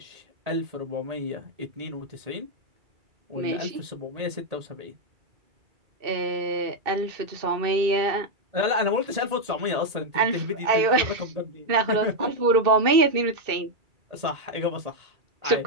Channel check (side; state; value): left; late; 2.6 ms